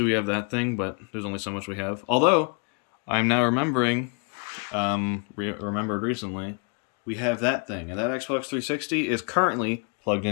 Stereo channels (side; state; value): right; quieter; 37.2 dB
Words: we have that thing, but there's only so much we have. Although, I'm now remembering, remembered recently, we have that thing, and that Xbox 360 is currently plugged